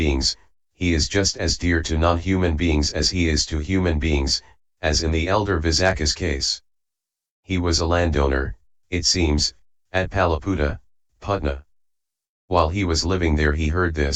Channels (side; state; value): both; identical; correlation 1.00